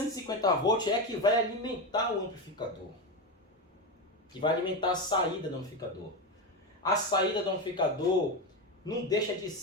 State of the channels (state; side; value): normal; both; correlation 0.16